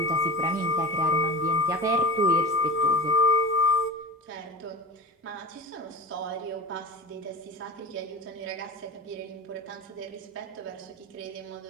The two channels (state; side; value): normal; both; correlation 0.35